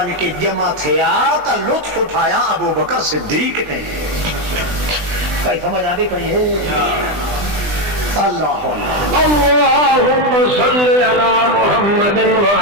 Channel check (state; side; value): late; left; 20 ms